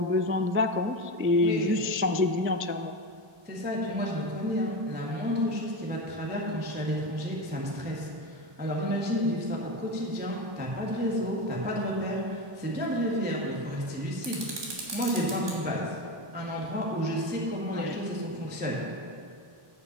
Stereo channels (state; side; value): late; left; 1.2 ms